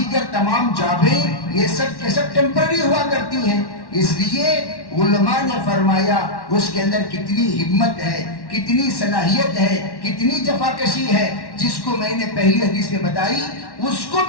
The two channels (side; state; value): right; late; 1.1 ms